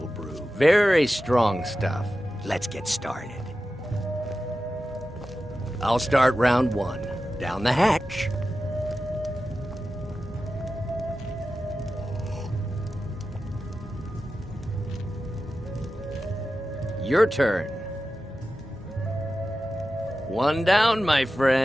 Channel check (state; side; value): normal; both; correlation 0.93